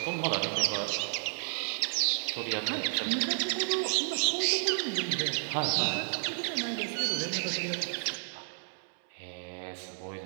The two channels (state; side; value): silent; left; 57 dB below the other